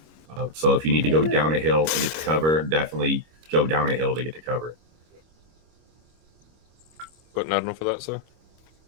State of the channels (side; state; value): left; late; 25 ms